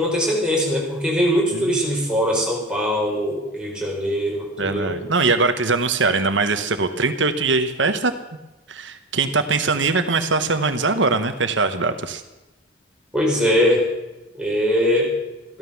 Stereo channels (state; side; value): normal; both; correlation 0.27